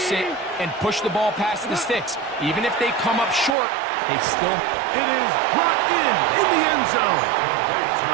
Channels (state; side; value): drops out; left; at 3.6 s